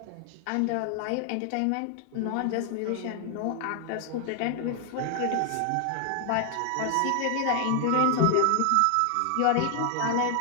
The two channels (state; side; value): different; both; correlation 0.00